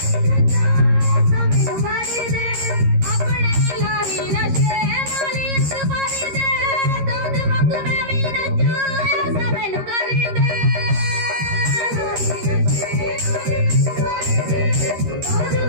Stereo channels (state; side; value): late; left; 13 ms